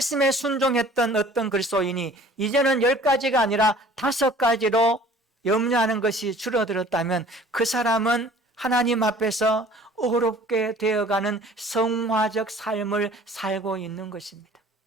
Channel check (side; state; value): both; normal; correlation 0.50